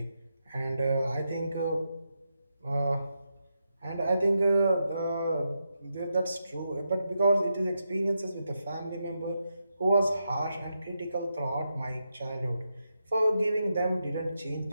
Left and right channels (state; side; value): inverted; both; correlation -0.85